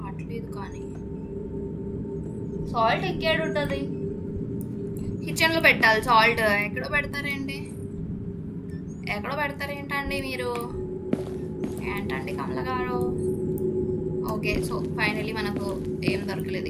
కానీ సాల్ట్ ఎక్కడ ఉంటుంది? కిచెన్లో పెట్టాలి సాల్ట్. ఎక్కడో పెడతారేంటి? ఎక్కడో పెడతారేంటండి మీరు? ఏంటండి కమల గారు? ఓకే సో ఫైనలీ మనకు ఏం దొరకలేదు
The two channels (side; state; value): both; identical; correlation 1.00